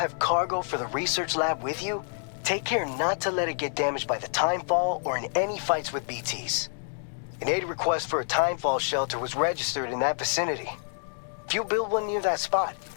cargo for the research lab with you, take care not to let it get damaged by the timefall or in any fights with BTs. An aid request for a timefall shelter was registered in that vicinity. If you build one near that spot,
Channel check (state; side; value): silent; right; digital silence